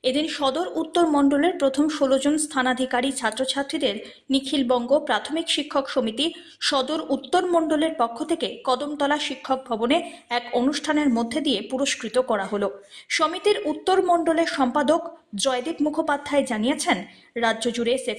এদিন সদর উত্তর মণ্ডলের প্রথম 16 জন স্থানাধিকারী ছাত্রছাত্রীদের নিখিলবঙ্গ প্রাথমিক শিক্ষক সমিতি সদর উত্তর মণ্ডলের পক্ষ থেকে কদমতলা শিক্ষক ভবনে এক অনুষ্ঠানের মধ্যে দিয়ে পুরস্কৃত করা হলো। সমিতির উত্তর মণ্ডলের সম্পাদক জয়দীপ মুখোপাধ্যায় জানিয়েছেন, রাজ্য জুড়ে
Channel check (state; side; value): identical; both; correlation 1.00